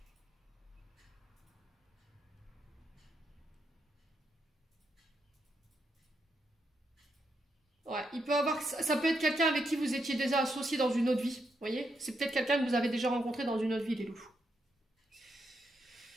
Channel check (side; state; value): both; normal; correlation 0.81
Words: Ouais, il peut avoir, ça peut être quelqu'un avec qui vous étiez déjà associé dans une autre vie. Vous voyez? C'est peut-être quelqu'un que vous avez déjà rencontré dans une autre vie, les loups.